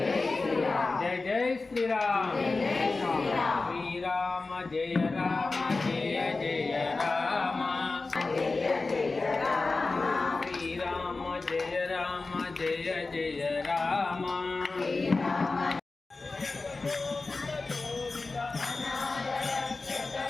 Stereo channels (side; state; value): right; quieter; 3.7 dB